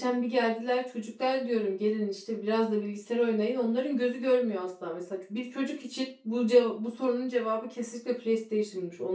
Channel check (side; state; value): both; identical; correlation 1.00